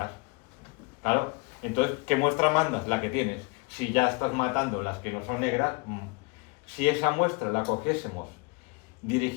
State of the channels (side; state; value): right; quieter; 29.4 dB